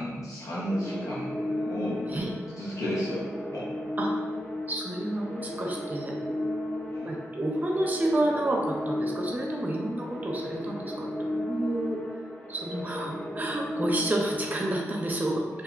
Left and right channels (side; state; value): both; normal; correlation 0.85